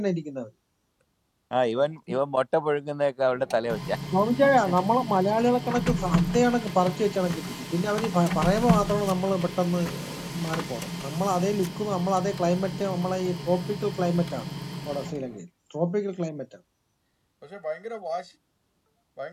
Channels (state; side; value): identical; both; correlation 1.00